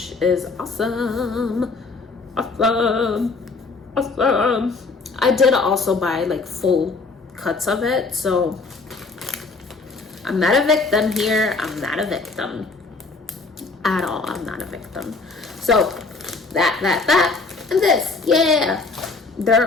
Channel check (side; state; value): right; quieter; 3.9 dB